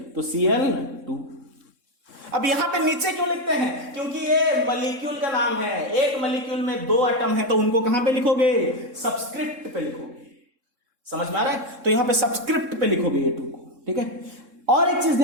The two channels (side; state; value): left; late; 3.7 ms